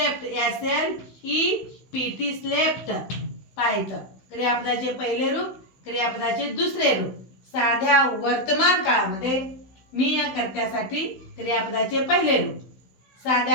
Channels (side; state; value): right; late; 16 ms